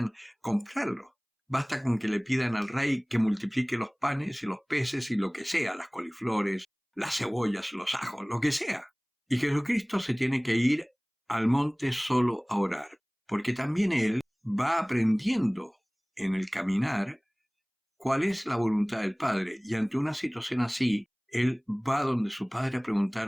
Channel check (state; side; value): identical; both; correlation 1.00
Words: comprarlo. Basta con que le pidan al rey que multiplique los panes y los peces y lo que sea, las coliflores, las cebollas, los ajos, lo que sea. Y Jesucristo se tiene que ir al monte solo a orar, porque también Él va aprendiendo en el caminar cuál es la voluntad del Padre, y ante una situación así, Él va donde su Padre a